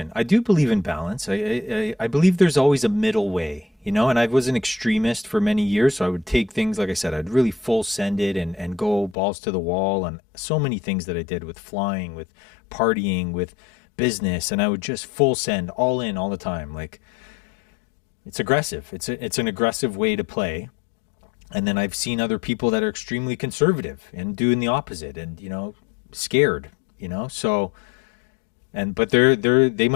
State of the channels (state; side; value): drops out; right; at 9.2 s